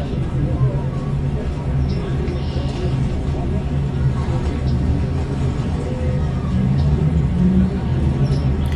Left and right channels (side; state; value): both; identical; correlation 1.00